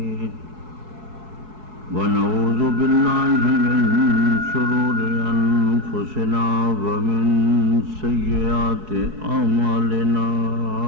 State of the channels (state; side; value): late; left; 4.7 ms